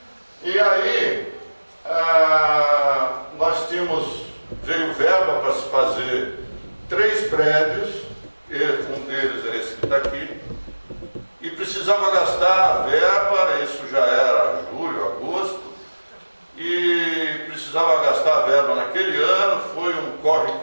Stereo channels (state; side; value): inverted; both; correlation -1.00